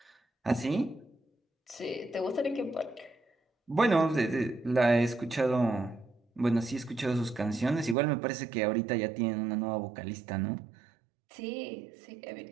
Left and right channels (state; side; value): drops out; left; at 8.0 s